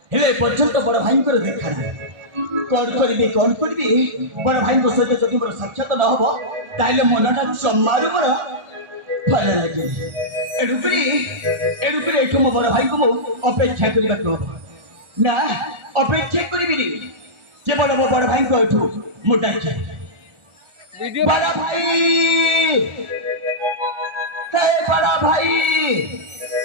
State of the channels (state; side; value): late; left; 1.4 ms